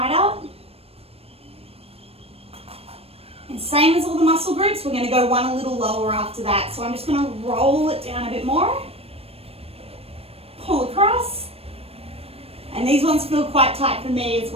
up. And same as all the muscle groups, we're going to go one a little lower after that. So I'm just going to roll it down a bit more, pull across, and these ones feel quite tight for me as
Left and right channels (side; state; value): left; late; 0.28 ms